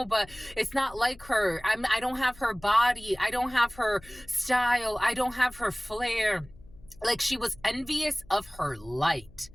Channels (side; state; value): left; noise; hum, 23 dB below the sound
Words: but it's not like her. I don't have her body. I don't have her style. I don't have her flair. Like, she was envious of her light.